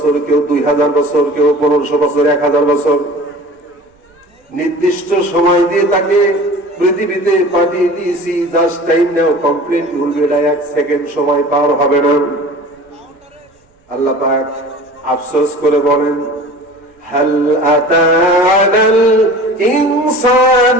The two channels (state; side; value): normal; both; correlation 0.41